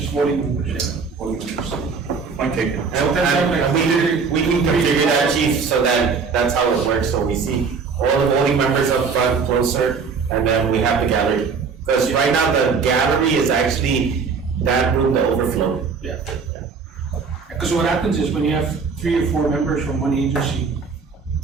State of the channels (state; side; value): quieter; left; 5.3 dB